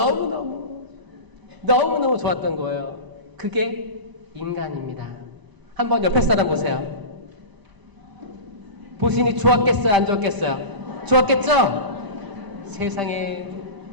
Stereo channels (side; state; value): left; late; 1.0 ms